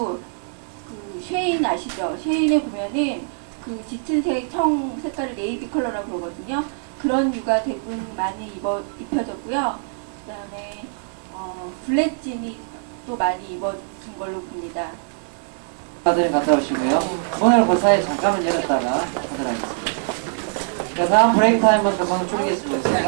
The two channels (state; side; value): silent; left; digital silence